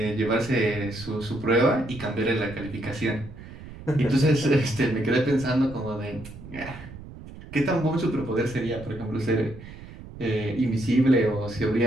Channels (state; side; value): noise; right; rumble, 15 dB below the sound